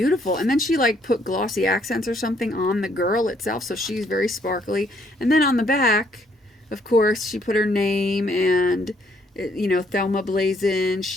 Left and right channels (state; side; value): normal; both; correlation 0.68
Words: And then she like put glossy accents or something on the girl itself, so she's very sparkly. And then on the back, of course, she put her name and you know, Thelma Blazin,